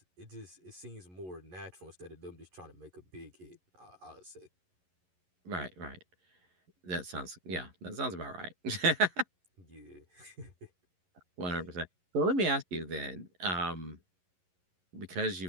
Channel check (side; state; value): left; late; 11 ms